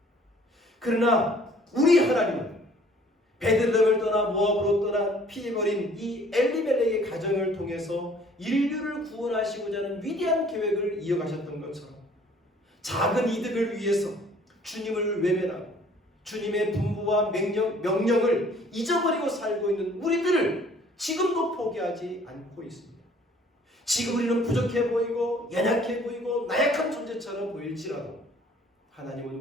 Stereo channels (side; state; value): both; normal; correlation 0.56